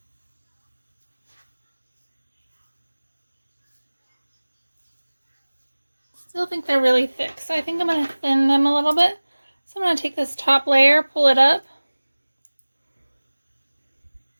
Still think they're really thick, so I think I'm going to thin them a little bit. So I'm going to take this top layer, pull it up.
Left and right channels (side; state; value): both; inverted; correlation -1.00